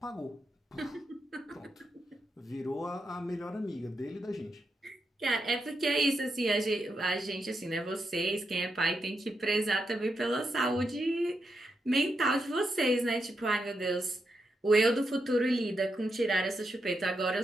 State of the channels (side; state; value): both; normal; correlation 0.84